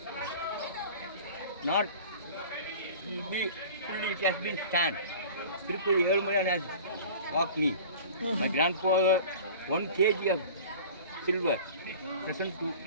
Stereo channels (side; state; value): both; inverted; correlation -0.40